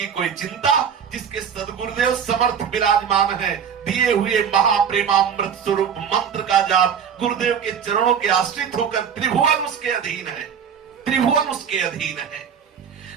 कोई चिंता। जिसके सदगुरुदेव समर्थ विराजमान है, दिए हुए महाप्रेमामृत स्वरूप मंत्र का जाप, गुरुदेव के चरणों के आश्रित होकर त्रिभुवन उसके अधीन है, त्रिभुवन उसके अधीन है।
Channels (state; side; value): quieter; left; 7.5 dB